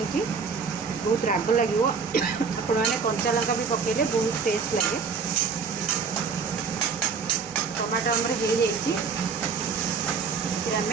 बहुत राग लगे आपण मैंने कंचा लंका भी पकेले बहुत टेस्ट लगे। टमाटो आमर हो जाइए, आम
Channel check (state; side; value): quieter; left; 5.4 dB